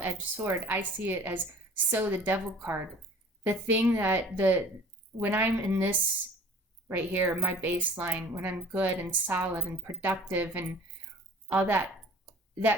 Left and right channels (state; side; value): normal; both; correlation 0.49